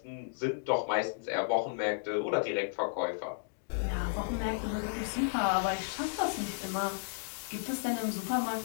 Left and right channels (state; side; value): silent; right; digital silence